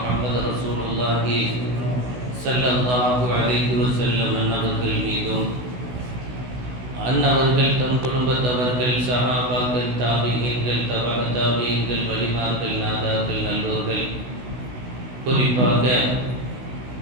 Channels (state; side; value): late; left; 16 ms